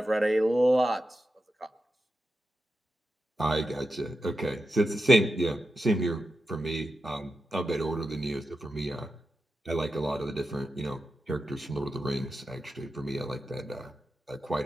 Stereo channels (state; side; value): normal; both; correlation 0.90